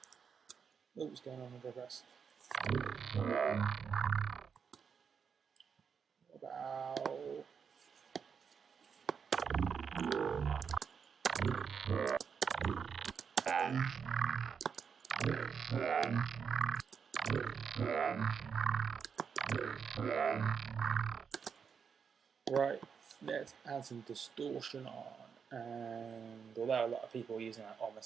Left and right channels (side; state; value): left; quieter; 6.5 dB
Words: Oh, what's going on with the rest? About right, let's add some distortion on, and although a lot of people are using like on the